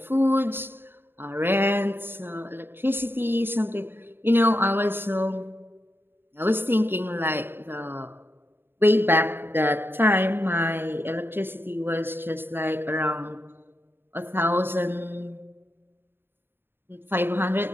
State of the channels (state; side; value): late; left; 0.10 ms